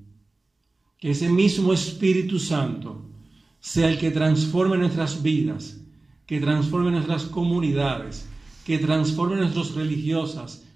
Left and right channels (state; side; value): quieter; left; 3.2 dB